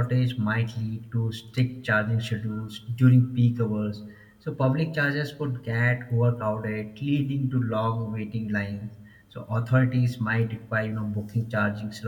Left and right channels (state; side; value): identical; both; correlation 1.00